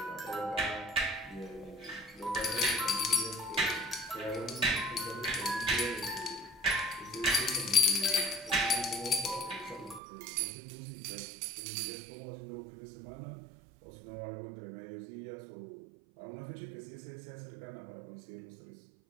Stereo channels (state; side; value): drops out; left; at 10.0 s